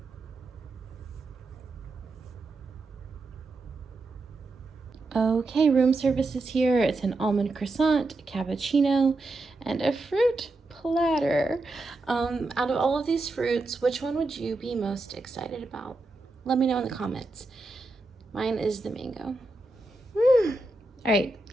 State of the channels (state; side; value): quieter; left; 3.1 dB